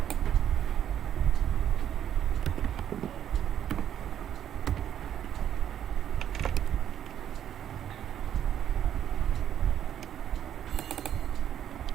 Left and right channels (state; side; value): quieter; left; 10.1 dB